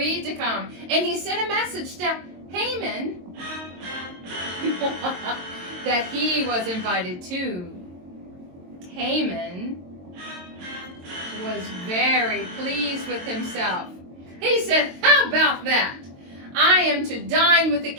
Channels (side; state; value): left; late; 22 ms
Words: to come, and he sent a message to Haman that he was invited too. Haman was very pleased with himself. He said, How about that? I am to dine with the